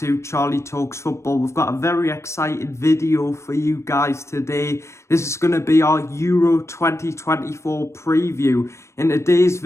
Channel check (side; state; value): right; late; 0.13 ms